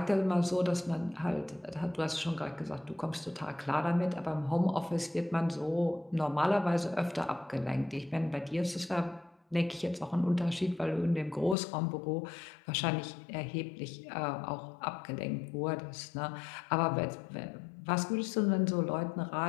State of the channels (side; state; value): right; drops out; at 11.6 s